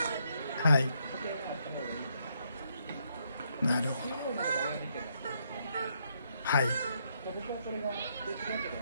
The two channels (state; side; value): inverted; both; correlation -0.75